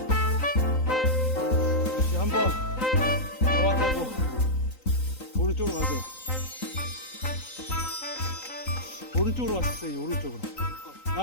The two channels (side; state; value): right; late; 3.9 ms